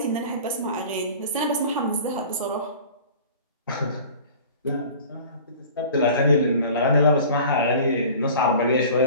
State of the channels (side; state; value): both; inverted; correlation -0.43